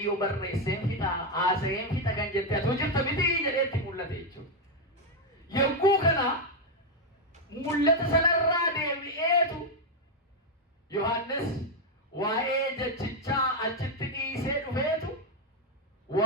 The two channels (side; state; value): both; normal; correlation 0.03